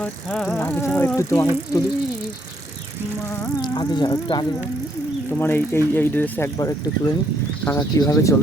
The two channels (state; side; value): normal; both; correlation 0.72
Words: একটু তোমার আগে যাও, একটু আগে যাও, তোমার এই এই এই ড্রেসে একবার একটু তুলে নিই। কাকা কীভাবে